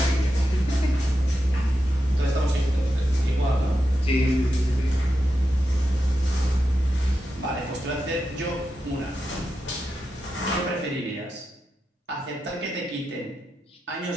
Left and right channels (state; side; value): normal; both; correlation 0.88